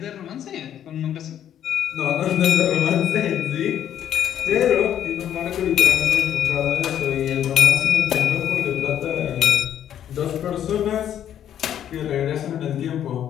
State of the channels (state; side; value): quieter; right; 10.3 dB